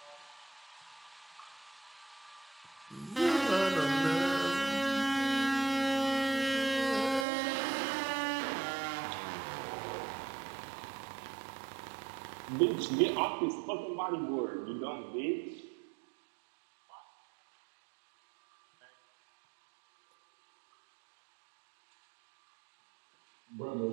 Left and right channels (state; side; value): drops out; left; at 7.2 s